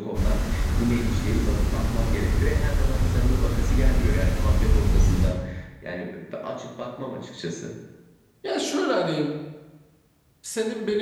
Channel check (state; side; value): identical; both; correlation 1.00